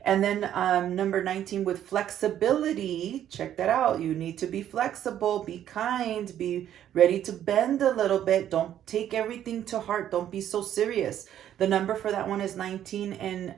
And then number 19 with flexibility. Check that out. You need to be flexible, be kind, be ready to bend a little bit. Don't take everything to heart. Don't be so serious. The number for that one is 19, and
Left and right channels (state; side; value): quieter; left; 10.9 dB